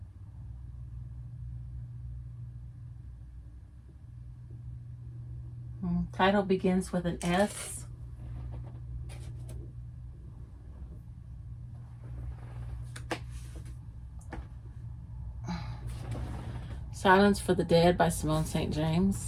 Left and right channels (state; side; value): identical; both; correlation 1.00